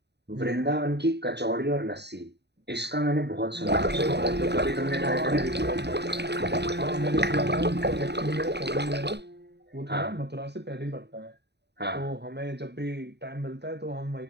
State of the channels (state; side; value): late; left; 0.49 ms